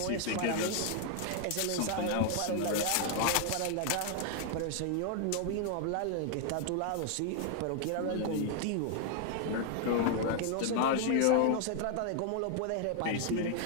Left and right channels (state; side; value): different; both; correlation 0.00